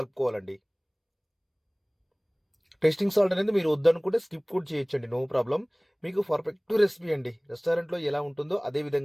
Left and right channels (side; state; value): both; identical; correlation 1.00